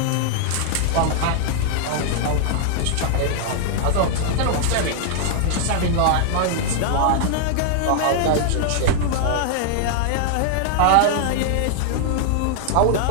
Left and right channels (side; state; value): both; different; correlation -0.01